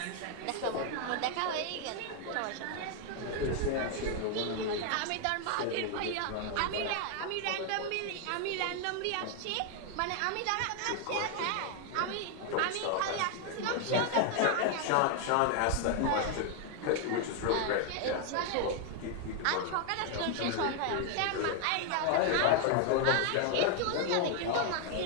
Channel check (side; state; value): both; different; correlation 0.00